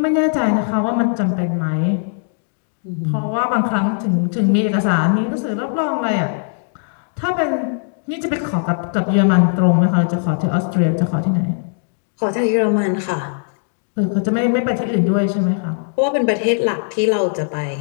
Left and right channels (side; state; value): right; silent; digital silence